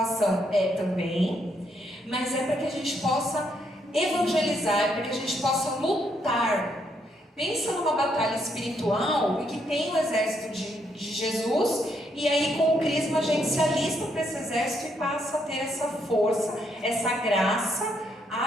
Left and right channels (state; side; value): normal; both; correlation 0.75